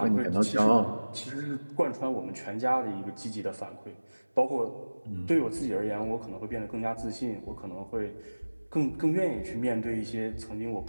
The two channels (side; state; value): both; inverted; correlation -1.00